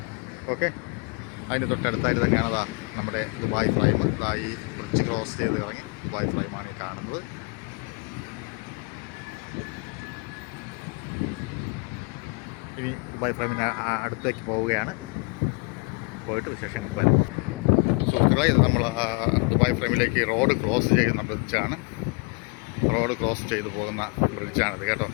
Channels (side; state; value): right; quieter; 31.4 dB